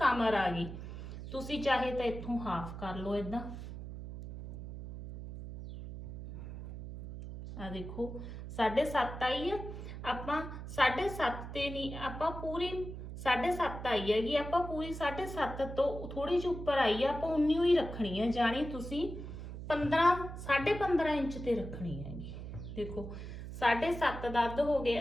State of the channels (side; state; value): right; noise; hum, 9 dB below the sound